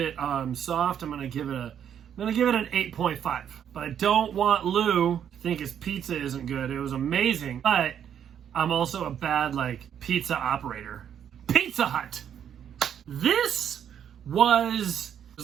soft, I'm gonna give it an 8.5. But I don't want Lou to think his pizza isn't good. It was amazing, but I'm also a bad pizza operator. Pizza Hut. This was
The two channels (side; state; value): left; quieter; 9.0 dB